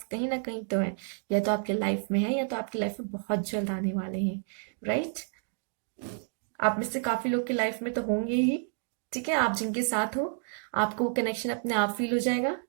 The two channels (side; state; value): left; silent; 58 dB below the other